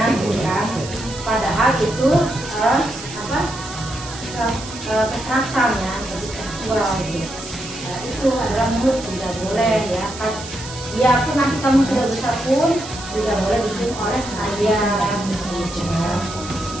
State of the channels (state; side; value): noise; right; hiss, 12 dB below the sound